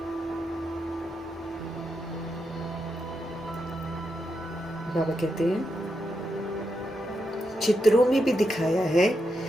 बाबा कहते हैं चित्रों में भी दिखाया है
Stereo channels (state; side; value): normal; both; correlation 0.84